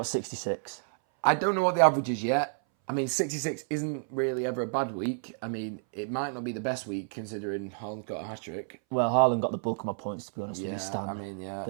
66. I don't know what the average is yet. I mean, 66 isn't really ever a bad week. I mean, it might not be the best week considering Haaland got a hat-trick. Well, Haaland got the bulk of my points, to be honest with you, Stan. I mean, yeah,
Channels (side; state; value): left; silent; 58 dB below the other